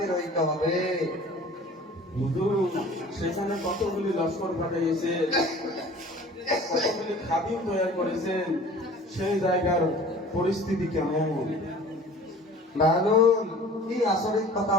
হইতে হবে। হুজুর, সেখানে কতগুলি লস্কর পাঠিয়েছেন, কতগুলি খাদিম তৈরি করেছেন, সেই জায়গার পরিস্থিতি কেমন? বাহাদুর, কি আচরিত কথা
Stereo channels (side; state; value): both; normal; correlation 0.44